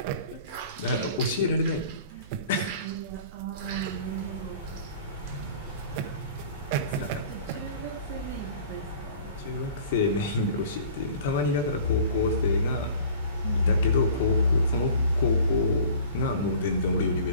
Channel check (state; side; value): inverted; both; correlation -0.45